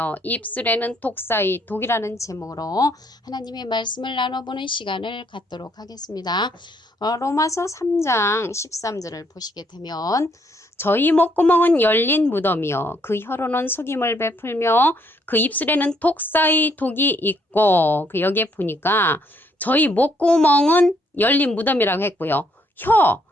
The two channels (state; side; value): normal; both; correlation 0.70